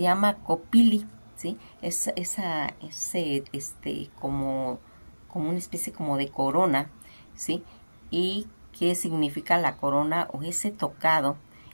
llama copili, ¿sí? Es como una especie como de corona, ¿sí? ¿Y qué significa la corona o ese tocado?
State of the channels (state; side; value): inverted; both; correlation -1.00